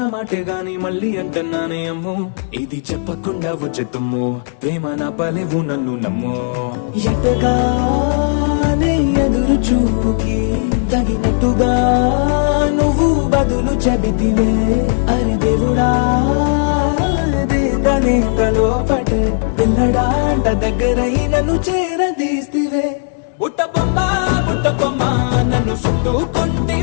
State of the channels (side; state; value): right; silent; digital silence